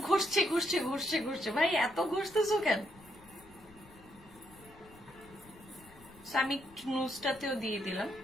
ঘষছে ঘষছে ঘষছে ঘষছে, ভাই এত ঘষতেছো কেন? আমি নুজটাতেও দিয়ে দিলাম,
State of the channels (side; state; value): left; noise; rumble, 23 dB below the sound